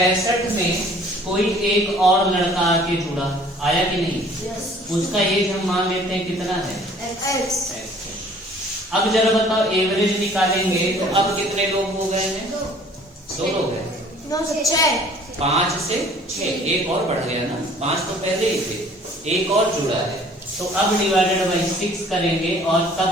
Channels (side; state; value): both; normal; correlation 0.53